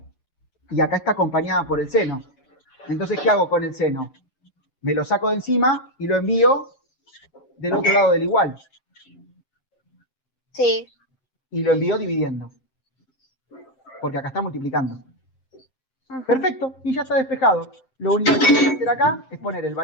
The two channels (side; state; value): right; late; 7.6 ms